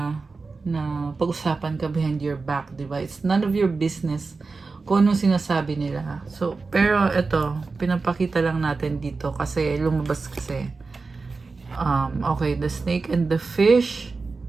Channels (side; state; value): left; quieter; 4.1 dB